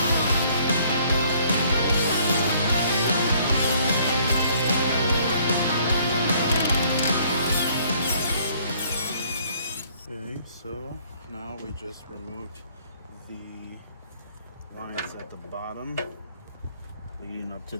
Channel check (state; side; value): inverted; both; correlation -0.61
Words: Okay, so now we just removed the lines at the bottom leading up to